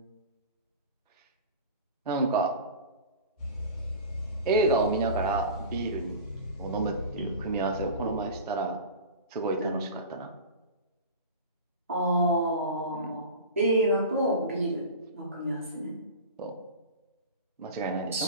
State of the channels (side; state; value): both; inverted; correlation -0.34